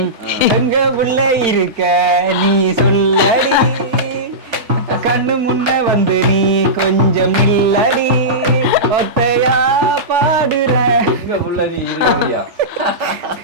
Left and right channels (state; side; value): late; left; 3.4 ms